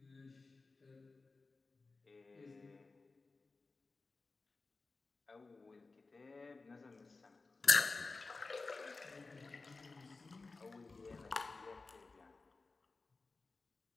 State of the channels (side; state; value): right; quieter; 3.8 dB